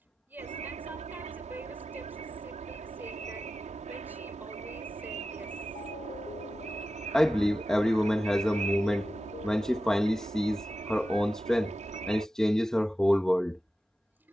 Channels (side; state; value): both; normal; correlation 0.93